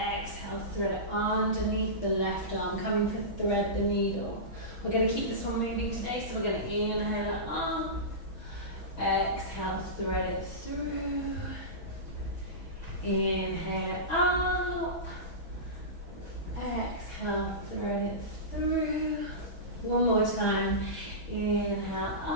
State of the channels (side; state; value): right; late; 6.2 ms